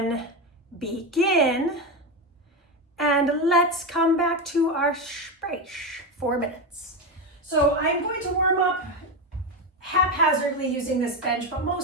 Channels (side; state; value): both; normal; correlation 0.14